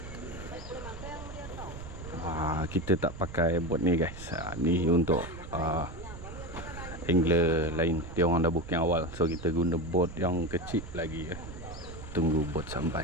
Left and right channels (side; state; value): right; noise; rumble, 12 dB below the sound